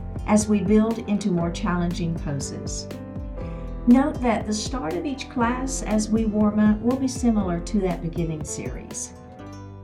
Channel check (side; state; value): both; identical; correlation 1.00